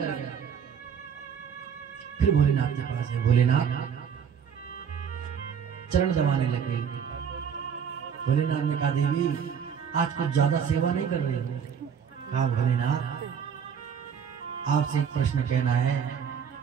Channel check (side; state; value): left; quieter; 7.4 dB